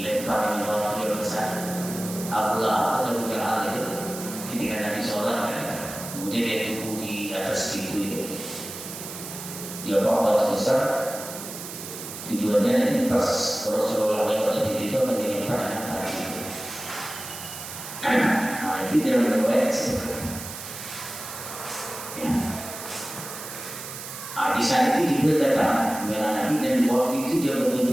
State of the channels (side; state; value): right; noise; hiss, 10 dB below the sound